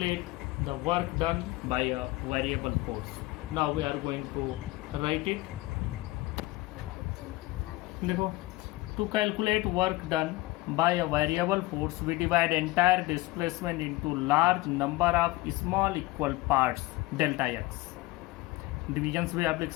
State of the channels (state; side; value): quieter; right; 20.0 dB